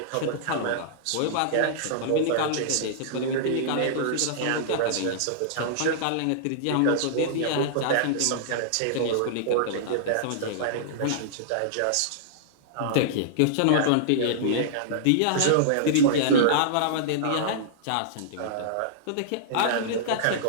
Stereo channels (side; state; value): both; different; correlation -0.02